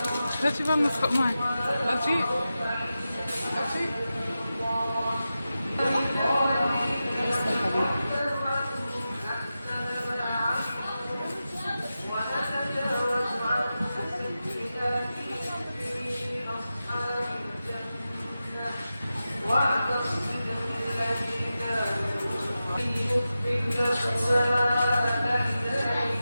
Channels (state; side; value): inverted; both; correlation -0.92